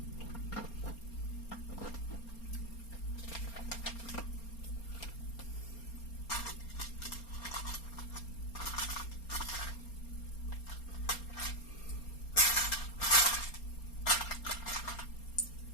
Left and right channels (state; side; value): late; right; 4.3 ms